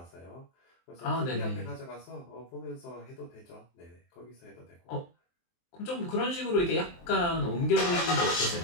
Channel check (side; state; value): right; late; 23 ms